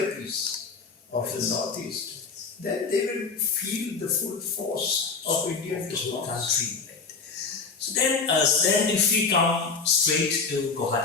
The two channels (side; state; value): right; quieter; 4.7 dB